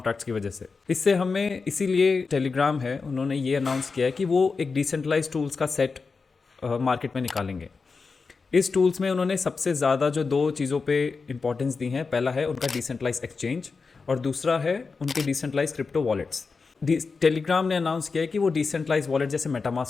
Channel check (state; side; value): quieter; right; 4.6 dB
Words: की वजह से। इससे हमें, इसीलिए टेलीग्राम है, उन्होंने ये अनाउंस किया है कि वो एक डिसेंट्रलाइज टूल्स का सेट मार्केट में निकालेंगे। इस टूल्स में उन्होंने सबसे ज़्यादा जो दो चीज़ों पे इंपॉर्टेंस दी है, पहला है उनका डिसेंट्रलाइज एक्सचेंज और दूसरा है उनके डिसेंट्रलाइज क्रिप्टो वॉलेट्स। टेलीग्राम ने अनाउंस किया है कि वो डिसेंट्रलाइज वॉलेट जैसे